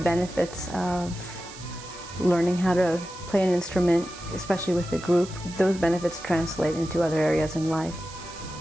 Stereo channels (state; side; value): noise; right; hiss, 16 dB below the sound